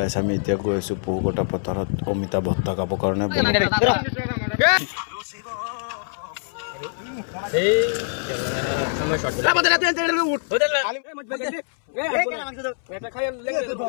আমি এতিয়া গৈ আছো পহুকটা পথাৰত অমিতা ভত্তা খাব কাৰণে।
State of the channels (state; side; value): silent; right; 62 dB below the other